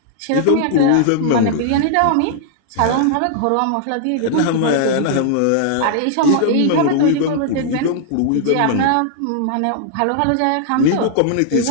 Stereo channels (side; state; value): both; different; correlation -0.01